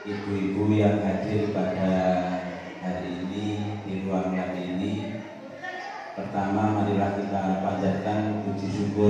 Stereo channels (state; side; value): identical; both; correlation 1.00